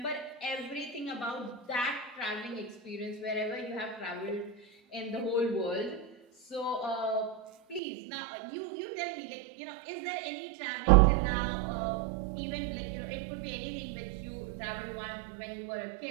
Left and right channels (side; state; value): left; drops out; at 7.8 s